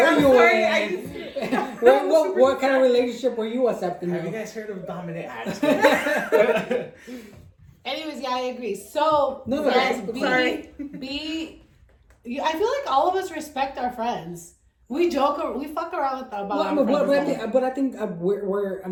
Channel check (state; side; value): identical; both; correlation 1.00